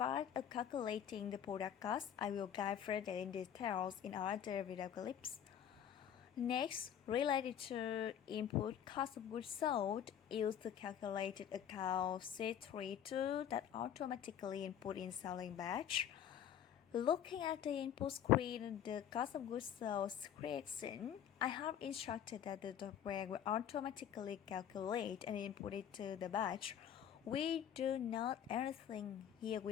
of calculating the product cost, I will guide further in details in other video clips. Next, related to input cost of goods sold, use the calculated account C32 that automatically input in selling batch. Looking at the input screen, the cost of goods sold creation, I have instructed that the software will automatically calculate and input it to the batch. We do not anything here.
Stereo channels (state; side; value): quieter; right; 9.5 dB